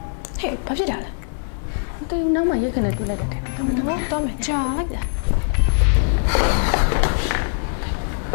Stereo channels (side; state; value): right; silent; 61 dB below the other